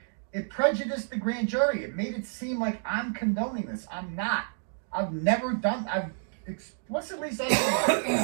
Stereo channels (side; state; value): left; silent; digital silence